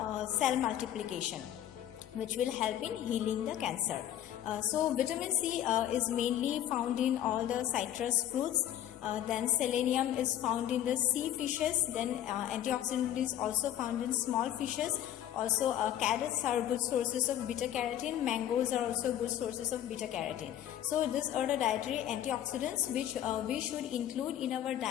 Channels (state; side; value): quieter; right; 11.5 dB